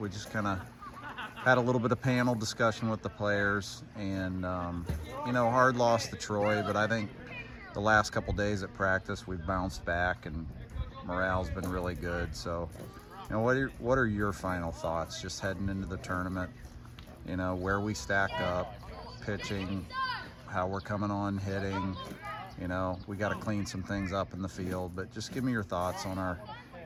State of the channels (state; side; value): identical; both; correlation 1.00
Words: just kind of had a little bit of panel discussion with the players, and, you know, hard loss to Troy, but I think the last couple days at practice we've bounced back and morale's been really good. So, you know, what are your final thoughts just heading into the tournament? You know, where we stack up, pitching, how we're coming on hitting. You know, we got to clean some things up in the field, but just give me your thoughts on